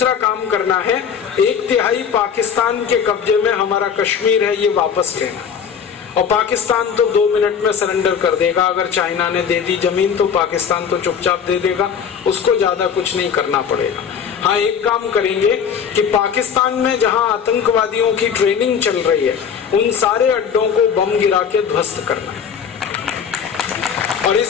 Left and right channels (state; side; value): quieter; right; 7.3 dB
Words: काम करना है, 1/3 पाकिस्तान के कब्जे में हमारा कश्मीर है, ये वापस लेना। और पाकिस्तान तो 2 मिनट में सरेंडर कर देगा। अगर चाइना ने दे दी जमीन तो पाकिस्तान तो चुपचाप दे देगा, उसको ज्यादा कुछ नहीं करना पड़ेगा। हाँ, एक काम करेंगे कि पाकिस्तान में जहां आतंकवादियों की ट्रेनिंग चल रही है, उन सारे अड्डों को बम गिरा के ध्वस्त करना है। और